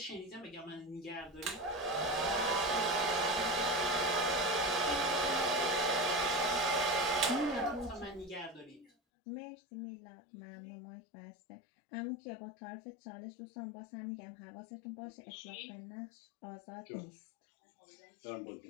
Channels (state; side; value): drops out; right; at 8.9 s